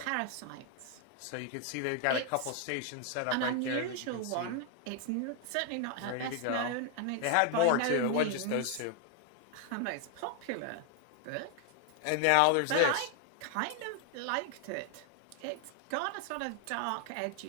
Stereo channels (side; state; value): both; different; correlation 0.01